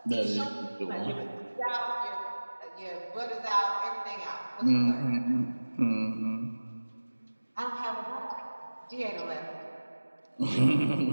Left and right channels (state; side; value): inverted; both; correlation -1.00